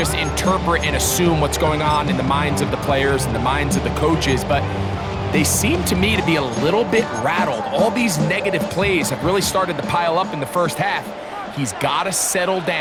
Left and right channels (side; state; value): both; identical; correlation 1.00